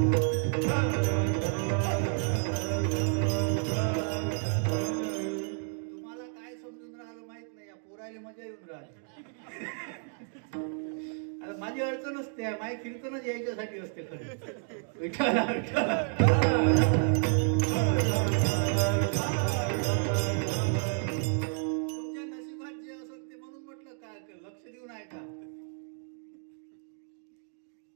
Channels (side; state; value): left; silent; 57 dB below the other